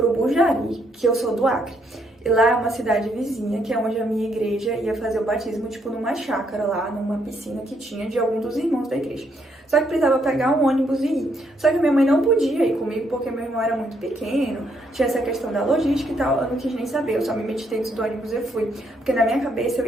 Bujari, que eu sou do Acre. E lá é uma cidade vizinha, que é onde a minha igreja ia fazer o batismo, tipo numa chácara lá, numa piscina que tinha de algum dos irmãos da igreja. Só que precisava pegar um ônibus e ir. Só que minha mãe não podia ir comigo, porque meu irmão era muito pequeno, tinha essa questão da logística e tal, eu não quis nem saber, eu só me meti dentro do ônibus e fui. Porque na minha cabeça eu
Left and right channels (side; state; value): both; normal; correlation 0.73